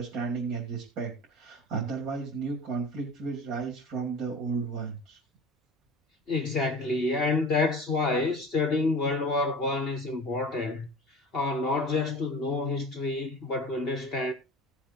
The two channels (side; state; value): both; normal; correlation 0.37